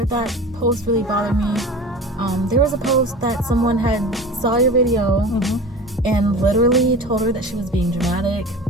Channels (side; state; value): both; normal; correlation 0.36